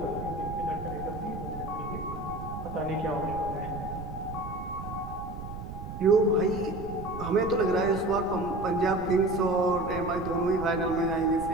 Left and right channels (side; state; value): right; noise; rumble, 9 dB below the sound